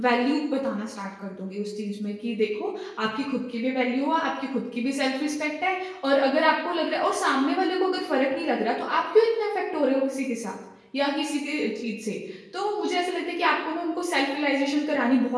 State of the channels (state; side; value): identical; both; correlation 1.00